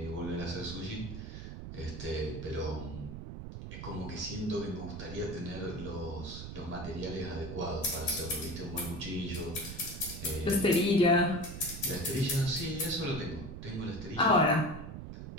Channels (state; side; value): noise; right; rumble, 9 dB below the sound